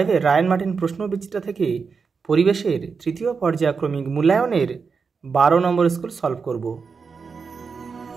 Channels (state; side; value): quieter; left; 5.3 dB